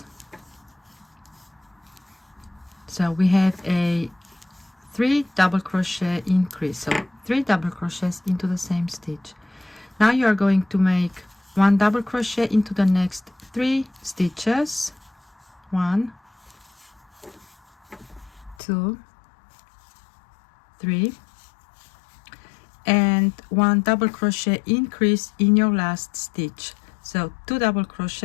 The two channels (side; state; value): right; drops out; at 18.6 s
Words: So we have a 3 double crochet increase, so 3 double crochets into the same stitch. Now you are going to make 1 double crochet into the next 3 stitches. 1, 2, 3, and 1 double crochet increase in your last stitch. So 2 double